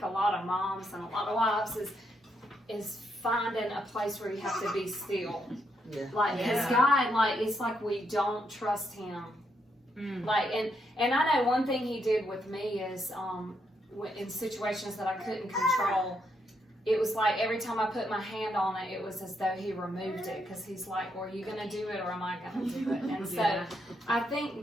a lot of moms and a lot of wives is finding a place where you have to be still. Yeah. Like, because Yeah. God, like, it's like we don't trust Him. Like, and I know one thing He did with me is, in situations that I couldn't control, it was like every time I put my hand on it, it was as though He removed it, because He's like, well, are you going to do it or am I going to do it? And so Yeah. I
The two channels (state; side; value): normal; both; correlation 0.78